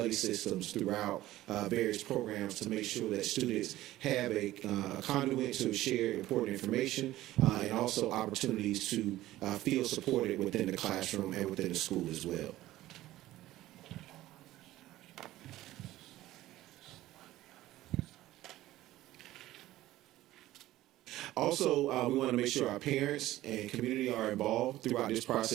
systems throughout various programs to make sure that students have a conduit to share important information and also opportunities to feel supported within the classroom and within the school as well. Also, we want to make sure our parents and community are involved throughout this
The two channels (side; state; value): left; quieter; 15.5 dB